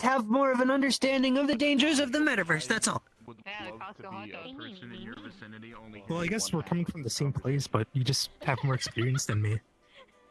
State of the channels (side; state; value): both; identical; correlation 1.00